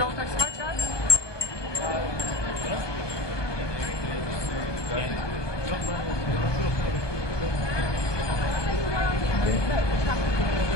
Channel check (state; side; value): late; right; 1.2 ms